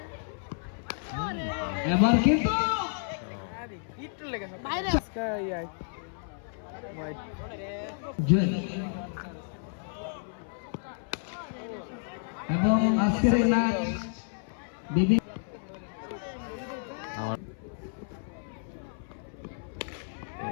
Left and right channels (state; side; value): silent; right; 57 dB below the other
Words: এবার কিন্তু জুয়েল। এবং আজকের এই ম্যাচ বিভিন্ন